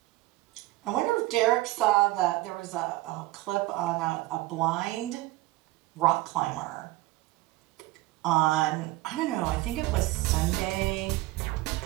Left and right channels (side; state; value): left; quieter; 18.8 dB